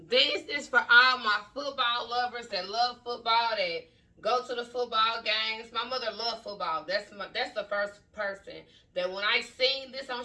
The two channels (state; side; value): identical; both; correlation 1.00